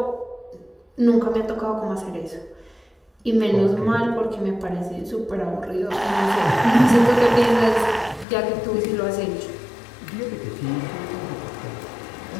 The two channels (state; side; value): drops out; right; at 8.2 s